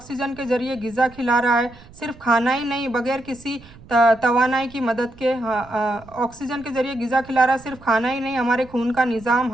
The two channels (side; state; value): right; noise; rumble, 22 dB below the sound